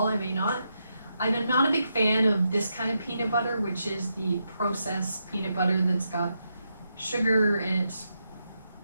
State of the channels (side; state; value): both; inverted; correlation -0.83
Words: I may not. I'm not a big fan of this kind of peanut butter, which is the processed peanut butter that's got sugar and it's